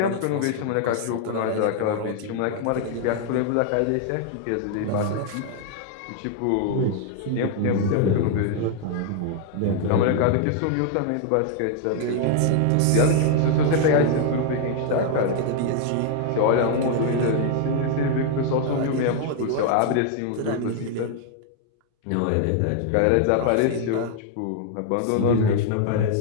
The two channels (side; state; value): both; different; correlation 0.00